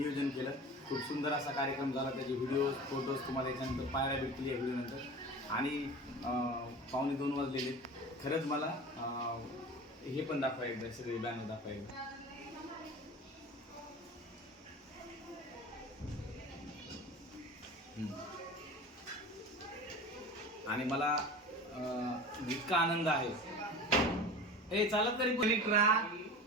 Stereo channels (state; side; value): normal; both; correlation 0.34